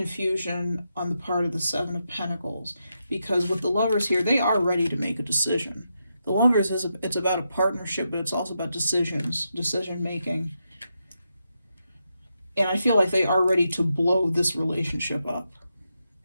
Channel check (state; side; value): inverted; both; correlation -0.84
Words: on the part of the Seven of Pentacles, because with the Lovers here, they are ready to make a decision. The Lovers it's about a partnership, but it's also about decision making. And I feel like they are ready to blow this relationship up